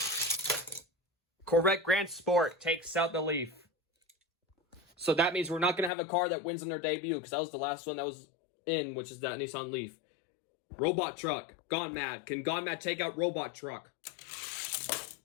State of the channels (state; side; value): drops out; right; at 5.9 s